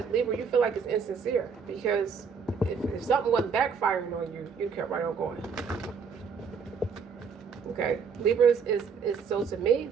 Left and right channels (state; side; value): quieter; left; 5.9 dB